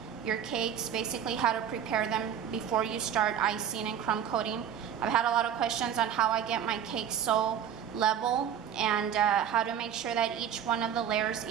your cakes, basically how to prepare them before you start icing and crumb coating. I've had a lot of questions on how I get my cakes so level and how to make sure that each one of the layers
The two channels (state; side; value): quieter; left; 9.0 dB